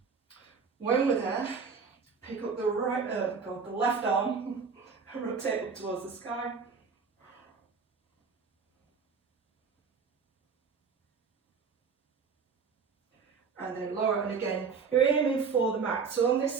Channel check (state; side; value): quieter; left; 5.5 dB